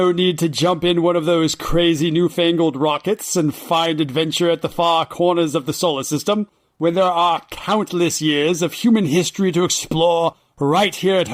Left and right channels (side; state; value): both; identical; correlation 1.00